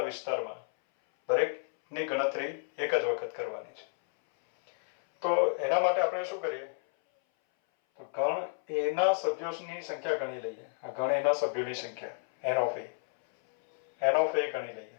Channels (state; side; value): silent; right; 57 dB below the other